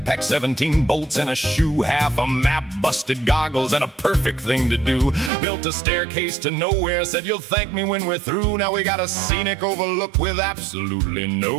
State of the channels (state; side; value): drops out; left; at 5.3 s